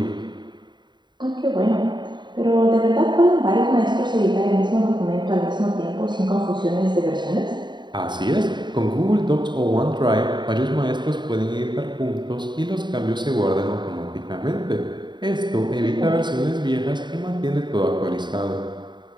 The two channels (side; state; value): left; late; 0.22 ms